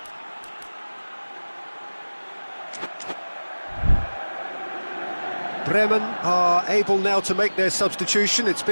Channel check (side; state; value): both; inverted; correlation -1.00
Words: Bremen are able now to make their substitution. It's